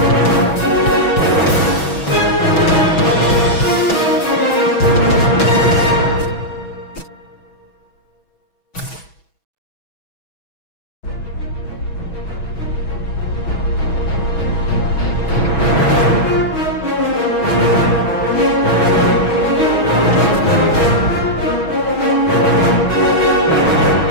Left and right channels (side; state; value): right; late; 6.2 ms